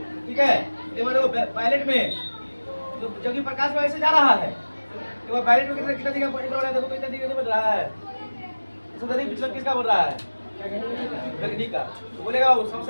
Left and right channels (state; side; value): inverted; both; correlation -1.00